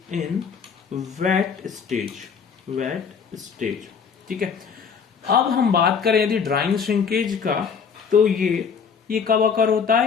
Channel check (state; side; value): quieter; right; 6.3 dB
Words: इन वेट स्टेज, ठीक है। अब हम बात करें यदि ड्राइंग श्रिंकेज का तो ये कब अकर होता